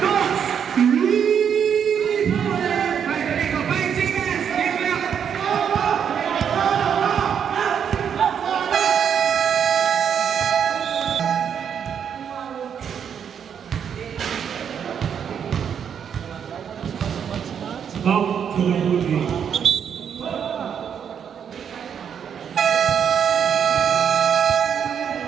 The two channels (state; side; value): quieter; left; 7.9 dB